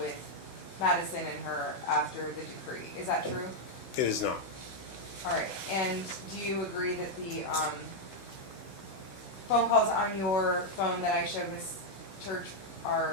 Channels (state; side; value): late; right; 16 ms